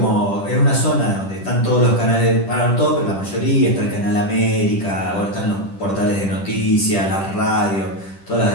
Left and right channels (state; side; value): late; right; 10 ms